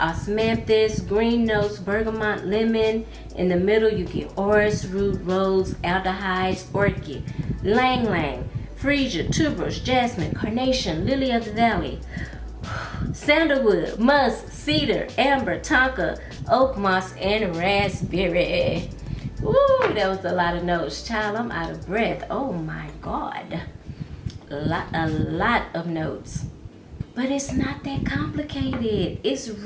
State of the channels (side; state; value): both; identical; correlation 1.00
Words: green notes, bergamot, lemon. In the middle, you get orris root, rose, aldehydes, orchid, lang lang, freesia, tuberose, jasmine, carnation, lily of the valley, sandalwood, musk, cedar, amber, tonka, oak moss, and raspberry. Ooh, that was a lot of notes. Child, I'm out of breath. Oh my God. A lot of notes. But it's not that complicated. It's